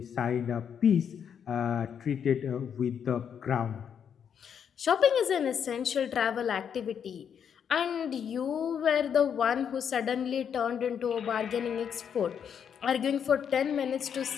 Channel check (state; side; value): quieter; right; 7.9 dB